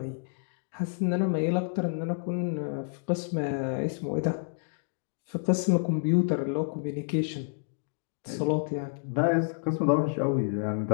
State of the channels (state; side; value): silent; right; digital silence